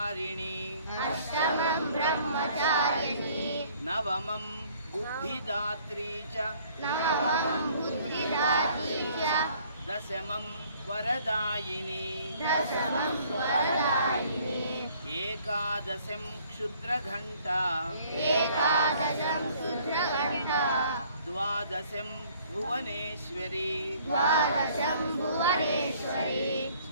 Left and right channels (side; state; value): both; inverted; correlation -0.58